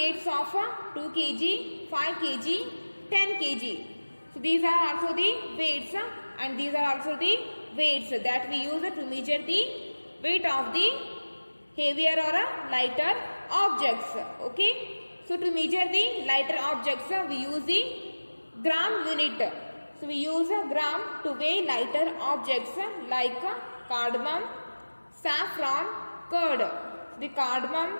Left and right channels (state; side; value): inverted; both; correlation -1.00